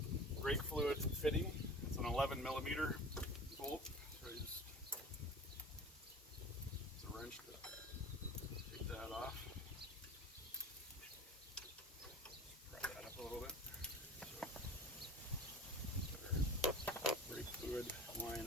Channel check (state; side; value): normal; both; correlation 0.37